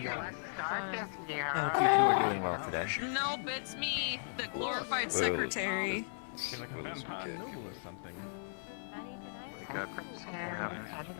Nope, it's me, the glorified secretary. Like a vampire or something.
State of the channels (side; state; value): right; silent; digital silence